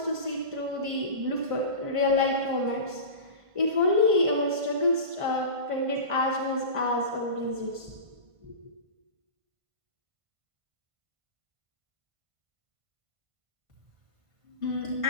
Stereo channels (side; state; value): left; late; 1.5 ms